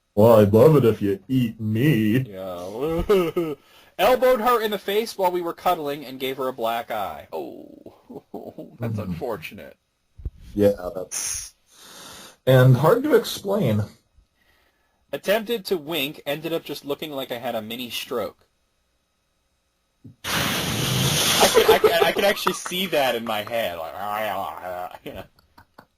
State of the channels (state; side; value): identical; both; correlation 1.00